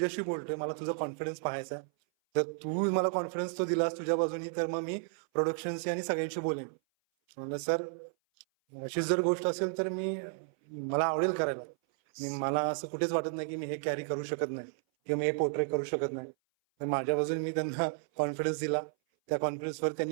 बोलतोय, मला तुझा कॉन्फिडन्स पाहायचा आहे. जर तू मला कॉन्फिडन्स तो दिलास तुझ्या बाजूनी तर मग मी प्रोडक्शनशी आणि सगळ्यांशी बोलेन. म्हणलं सर अशीच जर गोष्ट असेल तर मला आवडेल करायला. मला असं कुठेच वाटत नाही की मी हे कॅरी करू शकत नाही किंवा मी हे पोर्ट्रे करू शकत नाही. तर माझ्या बाजूने मी त्यांना कॉन्फिडन्स दिला. त्या कॉन्फिडन्सवर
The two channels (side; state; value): left; silent; 56 dB below the other